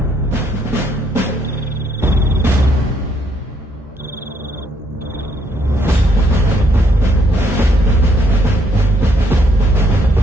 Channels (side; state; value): both; normal; correlation 0.71